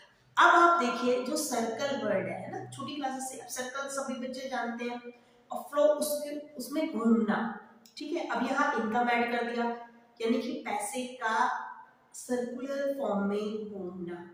अब आप देखिए जो सर्कल वर्ड है ना, छोटी क्लासेस से सर्कल सभी बच्चे जानते हैं, और फ्लो उसके उसमें घूमना, ठीक है। अब यहाँ इनकम ऐड कर दिया, यानी कि पैसे का सर्कुलर फॉर्म में घूमना।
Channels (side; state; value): both; identical; correlation 1.00